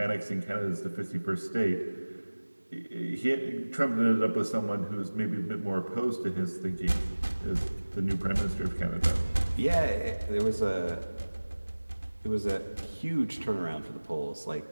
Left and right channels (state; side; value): inverted; both; correlation -1.00